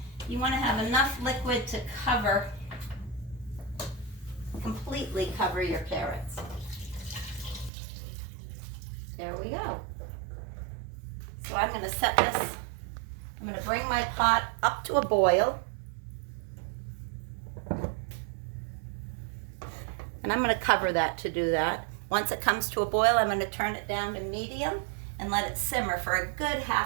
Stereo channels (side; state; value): left; drops out; at 7.7 s